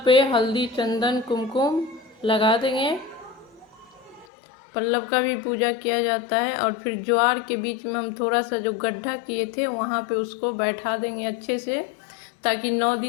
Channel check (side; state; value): right; drops out; at 4.2 s